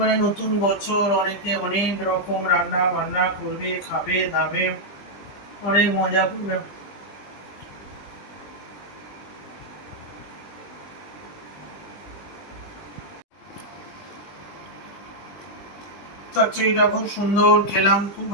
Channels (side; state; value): right; late; 20 ms